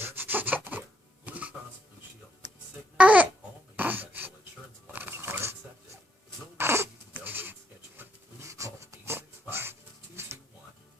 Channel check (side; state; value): both; normal; correlation 0.76